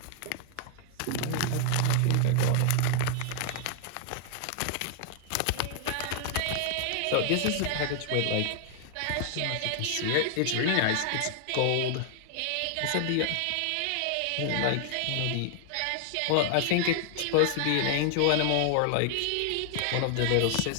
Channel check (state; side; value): different; both; correlation 0.00